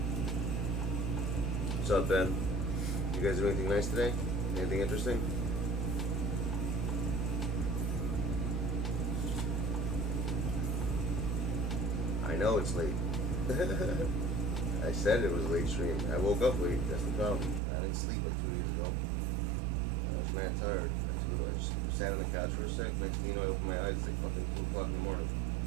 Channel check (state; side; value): drops out; left; at 17.6 s